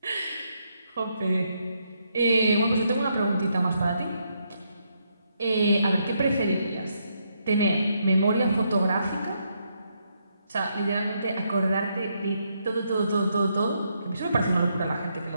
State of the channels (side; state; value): both; inverted; correlation -0.77